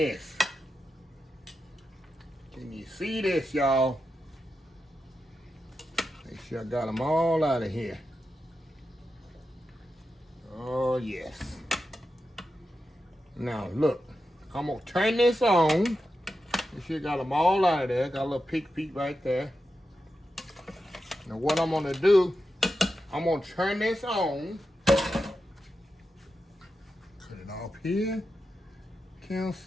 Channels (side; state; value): both; normal; correlation 0.89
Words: Can you see this, y'all? Make sure I got them all out of here. Oh, yes. Now, look. I'm going to turn this on. Make sure I got them all out of there. Got a little peek right there. Now, what I'm going to do, I'm going to turn this on. Cut it off here.